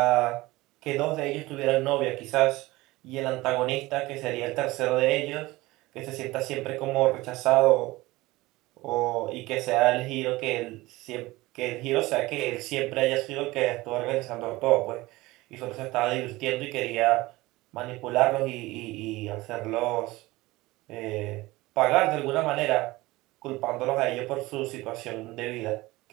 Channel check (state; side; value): quieter; left; 19.9 dB